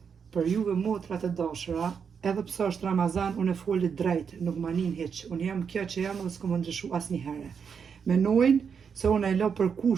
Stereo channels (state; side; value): quieter; left; 6.6 dB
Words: Për juve motrat e dashura, edhe pse është Ramazan, unë e foli drejt, nuk ma nin hiç. Unë jam kjo që jam dhe s'kom më ndryshu asnjëherë. Menojnë se unë e lo për